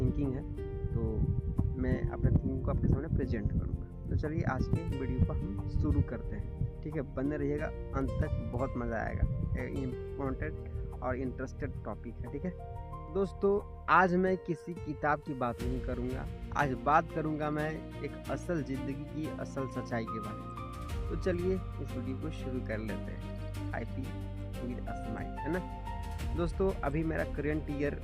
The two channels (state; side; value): identical; both; correlation 1.00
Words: है तो मैं अपने थिंकिंग को आपके सामने प्रेजेंट करूँगा। तो चलिए आज के वीडियो को हम शुरू करते हैं। ठीक है, बने रहिएगा अंत तक, बहुत मज़ा आएगा। इम्पोर्टेंट और इंटरेस्टेड टॉपिक है। ठीक है दोस्तों, आज मैं किसी किताब की बात नहीं करूँगा, आज बात करूँगा मैं एक असल ज़िंदगी की असल सच्चाई के बारे में। तो चलिए इस वीडियो को शुरू कर लेते हैं। I P with a smile, है ना दोस्तों। अभी मेरा करंट ईयर